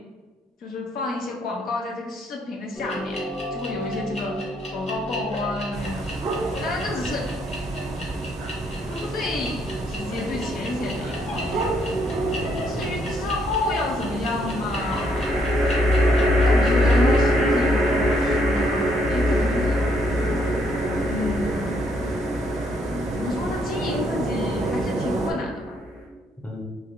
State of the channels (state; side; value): normal; both; correlation 0.71